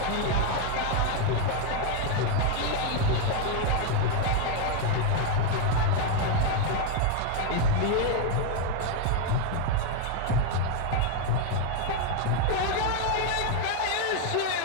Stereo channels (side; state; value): both; different; correlation 0.01